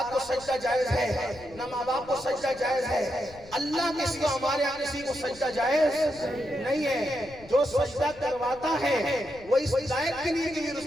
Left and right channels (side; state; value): left; noise; rumble, 21 dB below the sound